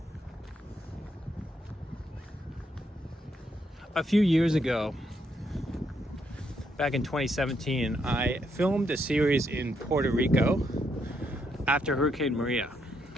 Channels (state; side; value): normal; both; correlation 0.76